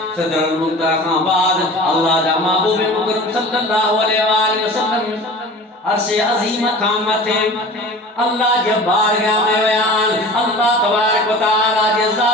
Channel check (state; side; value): normal; both; correlation 0.39